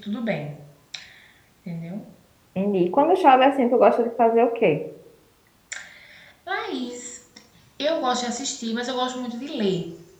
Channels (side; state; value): both; identical; correlation 1.00